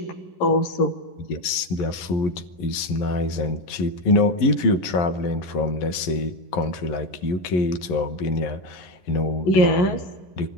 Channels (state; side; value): late; right; 11 ms